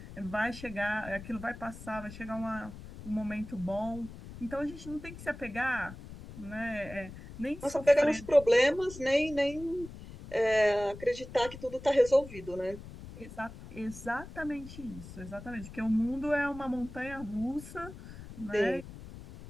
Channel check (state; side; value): noise; left; rumble, 14 dB below the sound